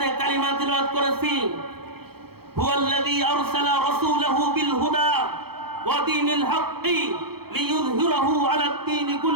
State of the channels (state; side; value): late; left; 0.96 ms